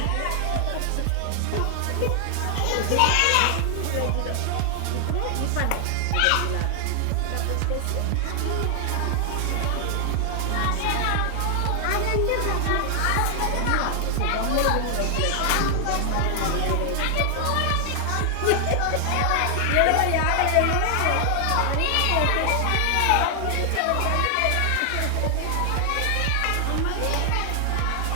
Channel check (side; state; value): both; different; correlation 0.00